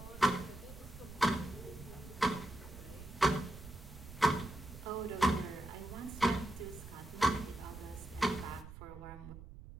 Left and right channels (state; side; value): noise; right; rumble, 14 dB below the sound